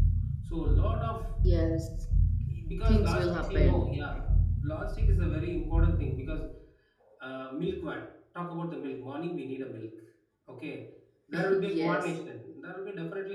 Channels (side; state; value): both; identical; correlation 1.00